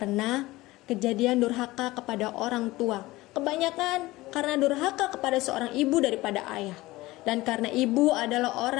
kejadian durhaka kepada orang tua. Kebanyakan karena durhaka kepada seorang ibu daripada ayah. Dan karena ibu adalah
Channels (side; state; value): right; quieter; 19.1 dB